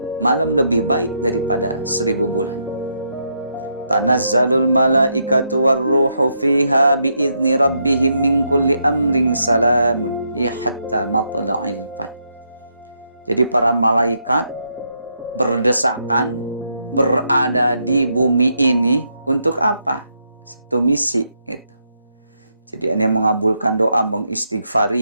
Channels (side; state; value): both; inverted; correlation -0.79